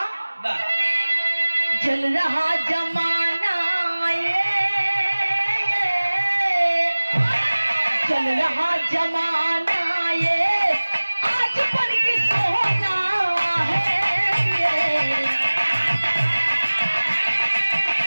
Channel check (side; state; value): both; inverted; correlation -1.00